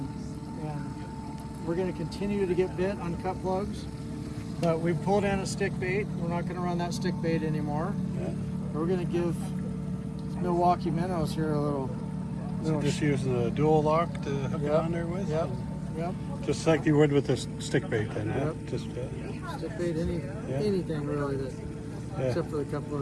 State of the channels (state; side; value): identical; both; correlation 1.00